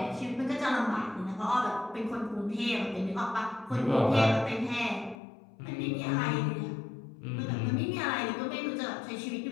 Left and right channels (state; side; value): drops out; right; at 5.2 s